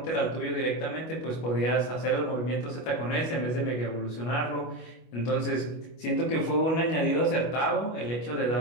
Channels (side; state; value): right; late; 25 ms